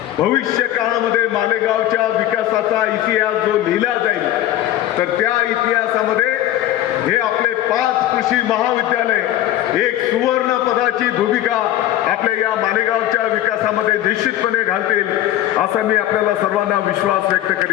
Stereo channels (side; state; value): right; quieter; 13.1 dB